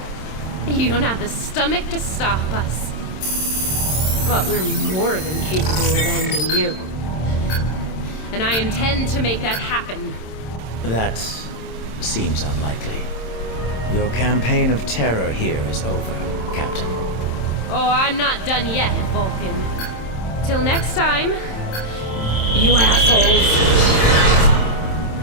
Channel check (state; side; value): late; right; 27 ms